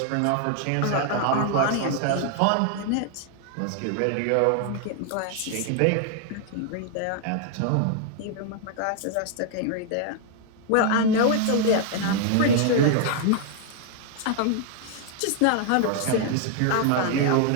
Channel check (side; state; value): both; different; correlation 0.00